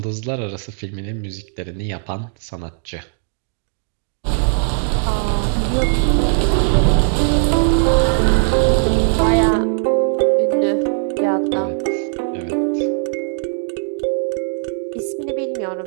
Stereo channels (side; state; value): left; silent; digital silence